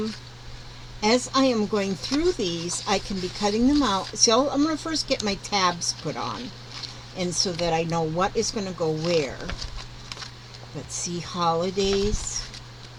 going through these, I can be cutting them out. So I'm going to first get my tabs put on, and so that I know what is going to go where. Let's see, holidays.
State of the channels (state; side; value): identical; both; correlation 1.00